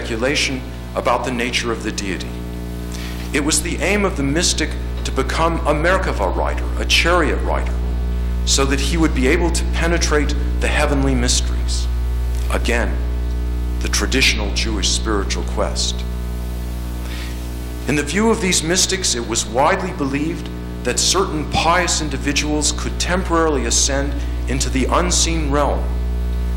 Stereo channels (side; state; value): both; identical; correlation 1.00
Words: about the nature of the deity. It was the aim of the mystic to become a Merkavah rider, a chariot rider, so that he would be able to penetrate the heavenly mysteries. Again, the traditional Jewish spiritual quest. In the view of these mystics, it was widely believed that certain pious individuals could temporarily ascend into the unseen realm,